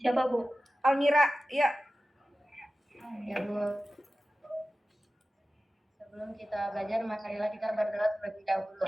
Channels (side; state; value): both; normal; correlation 0.95